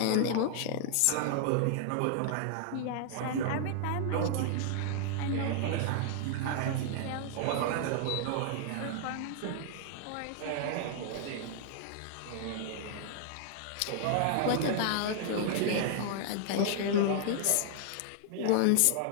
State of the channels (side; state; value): both; different; correlation -0.01